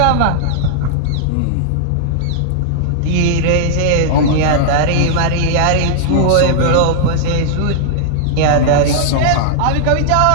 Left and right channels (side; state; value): both; different; correlation -0.01